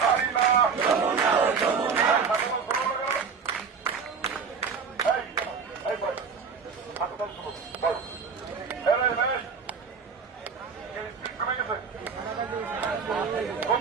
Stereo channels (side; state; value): left; quieter; 5.8 dB